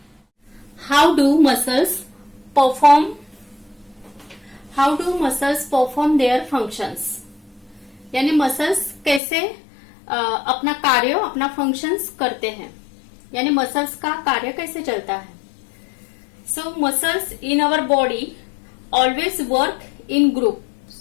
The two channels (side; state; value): right; drops out; at 9.2 s